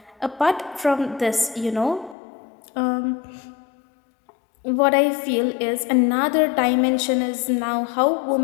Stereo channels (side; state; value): right; drops out; at 2.1 s